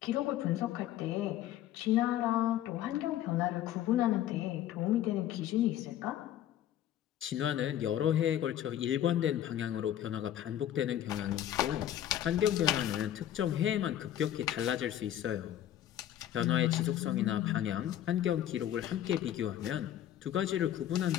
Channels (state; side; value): quieter; right; 11.7 dB